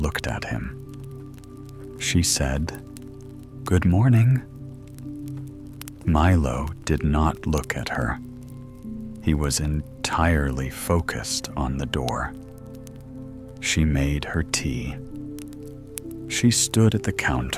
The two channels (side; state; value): both; identical; correlation 1.00